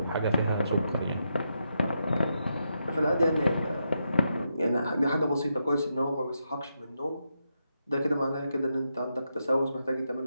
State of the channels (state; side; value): inverted; both; correlation -0.84